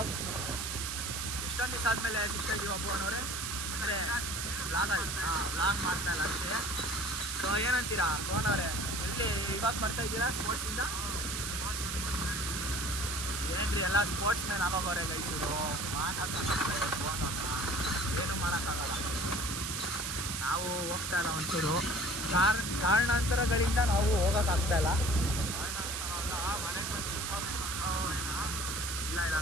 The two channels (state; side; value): noise; right; hiss, 3 dB below the sound